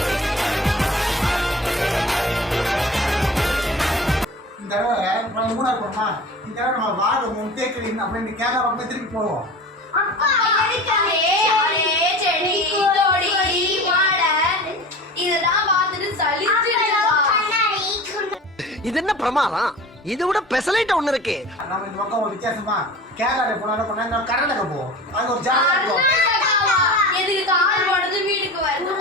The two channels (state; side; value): normal; both; correlation 0.37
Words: இந்த தடவை மூணாறு போறோமா? இந்த தடவை நம்ம வாழை முன்தேக்கிறீங்க அப்படின்னு கேட்காம திருப்பி போவோம். இது என்ன பிரமாதம்? இது விட பெசலைட் ஒண்ணு இருக்கு. நம்ம இந்த பக்கம் ஒரு வித்தியாசமா கேரளா போனா கொண்டா கர்நாடகா போவோம். அங்க ஒரு ஜாலியா இருக்கும். எதுக்கு கால் போடுறது வீட்டுக்கு